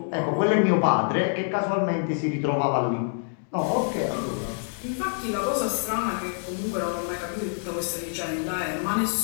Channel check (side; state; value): right; silent; digital silence